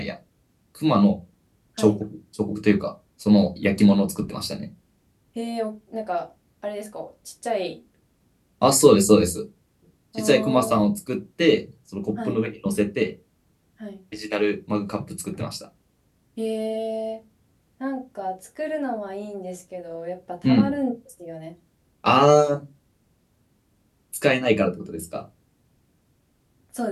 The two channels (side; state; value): both; identical; correlation 1.00